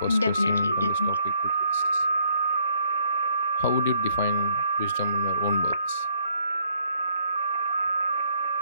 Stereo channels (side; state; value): both; inverted; correlation -0.67